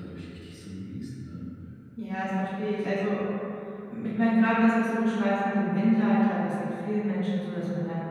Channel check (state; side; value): identical; both; correlation 1.00